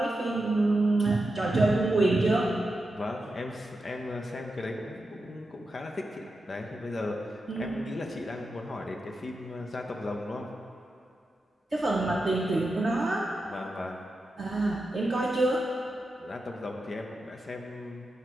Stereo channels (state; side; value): normal; both; correlation 0.89